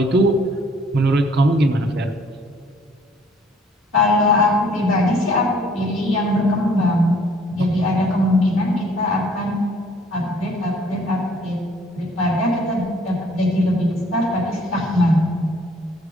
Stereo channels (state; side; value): normal; both; correlation 0.59